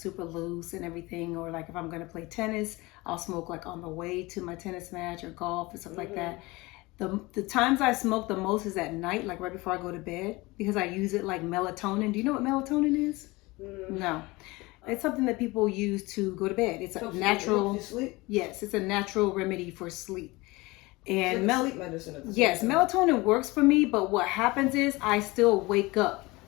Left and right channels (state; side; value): quieter; right; 22.5 dB